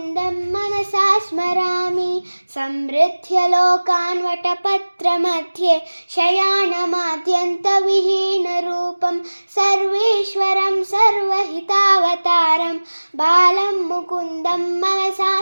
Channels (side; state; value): both; inverted; correlation -1.00